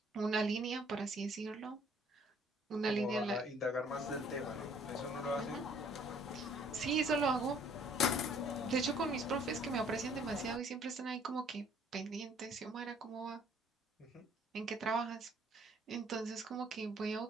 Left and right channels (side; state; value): both; normal; correlation 0.60